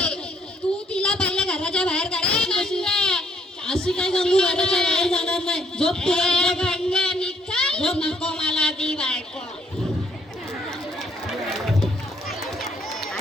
तू तिला पहिल्या घराच्या बाहेर काढ. अशी काय गंगू घराच्या बाहेर जाणार नाही. झोप झोप. नको मला ती बायको.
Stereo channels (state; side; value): normal; both; correlation 0.68